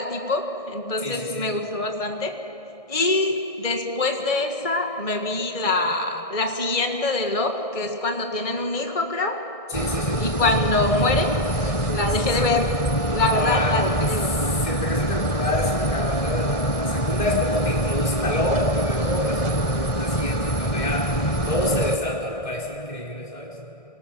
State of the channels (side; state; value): right; late; 1.6 ms